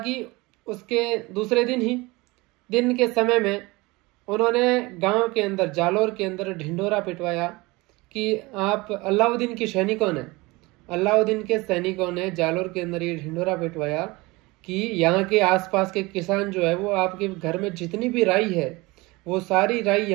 उसके दूसरे दिन के समय में उन्होंने गांव के अंदर, जालोर के अंदर ढिंढोरा पिटवाया कि आप अलाउद्दीन के सैनिकों ने जालोर के अंदर ये ढिंढोरा पिटवाया कि यहाँ के आसपास के किसान जो है वो आपके घर में जितनी भी राई है वो सारी राई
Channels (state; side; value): quieter; left; 23.1 dB